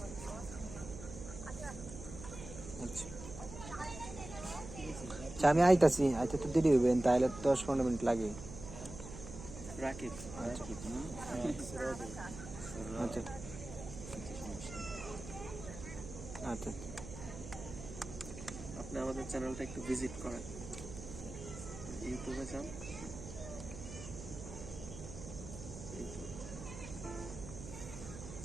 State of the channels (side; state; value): right; noise; hum, 11 dB below the sound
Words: আমি আইতাছি আইতে তো দেরি হইবেন তাহলে 10-15 মিনিট লাগে রাকিব আচ্ছা আচ্ছা আপনি আমাদের চ্যানেলটা একটু ভিজিট করেন ইউটিউবে যান